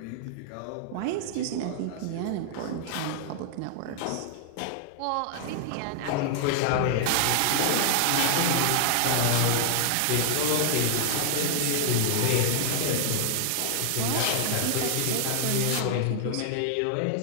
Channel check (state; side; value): different; both; correlation -0.01